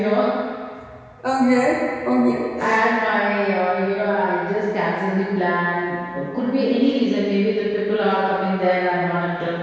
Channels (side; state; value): both; identical; correlation 1.00